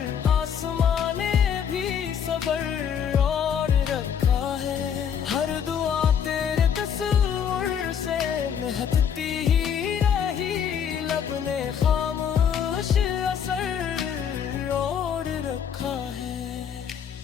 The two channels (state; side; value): quieter; right; 8.0 dB